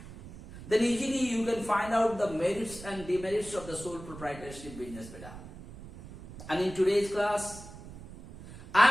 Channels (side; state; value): right; noise; rumble, 15 dB below the sound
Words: then easily you can find out the merits and demerits of the sole proprietorship business beta. And in today's class,